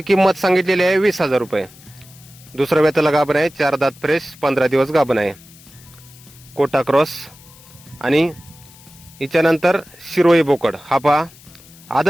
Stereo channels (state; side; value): noise; left; hiss, 23 dB below the sound